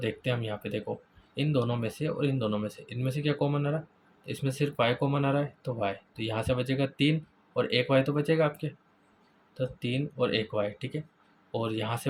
हैं हम यहाँ पे, देखो इन दोनों में से और इन दोनों में से, इनमें से क्या कॉमन आ रहा है, इसमें सिर्फ y कॉमन आ रहा है तो y, तो यहाँ से बचेगा 3 और 1 y तो बचेगा आपके, तो 3 और 1 y, ठीक है। और यहाँ से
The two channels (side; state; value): both; identical; correlation 1.00